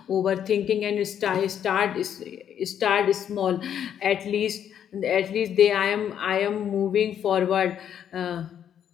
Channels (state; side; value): quieter; right; 9.2 dB